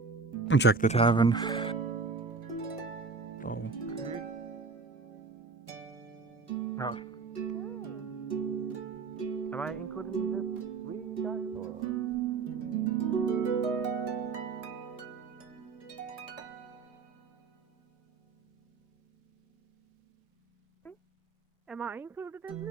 Check the tavern. Oh. No. Am I included in this? We guys or? Am I included in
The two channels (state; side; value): quieter; left; 4.5 dB